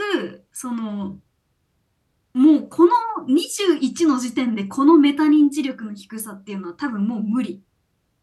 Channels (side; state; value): both; identical; correlation 1.00